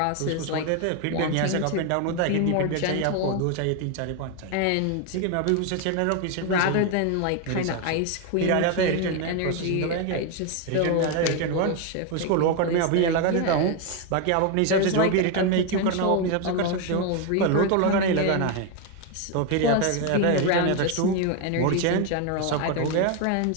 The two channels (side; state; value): both; different; correlation 0.01